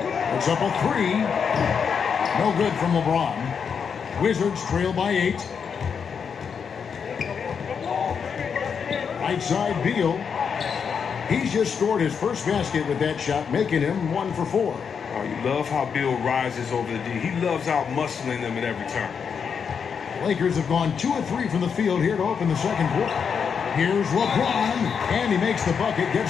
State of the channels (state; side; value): quieter; right; 6.6 dB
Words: It's up a 3. No good from LeBron. Wizards trail by 8. Right side Beal. He's just scored his first basket with that shot, making him 1 for 4. Oh, you love how Beal rises over the D. He loves out-muscling them at every turn. Lakers have gone 2 of 3 from the field here to open the second quarter. Here's LeBron, and he makes the bucket,